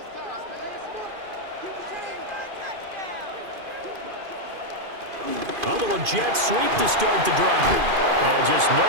A little jet sweep to start the drive. And just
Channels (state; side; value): late; left; 2.5 ms